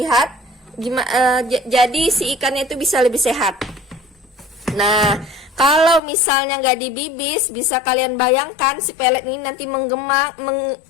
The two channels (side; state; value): right; drops out; at 6.0 s